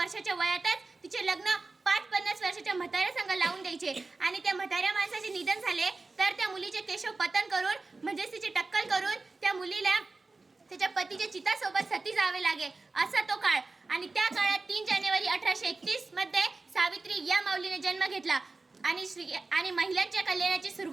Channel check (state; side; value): quieter; left; 3.6 dB